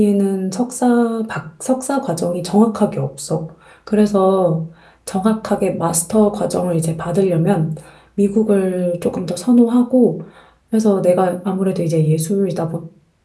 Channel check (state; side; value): identical; both; correlation 1.00